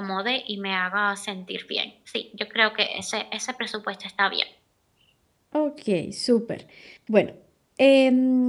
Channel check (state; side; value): identical; both; correlation 1.00